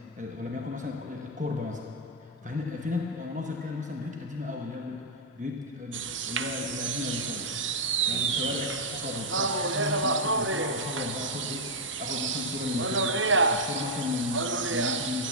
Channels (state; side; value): normal; both; correlation -0.03